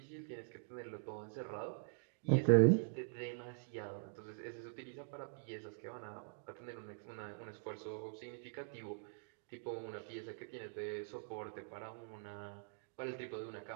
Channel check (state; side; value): silent; left; digital silence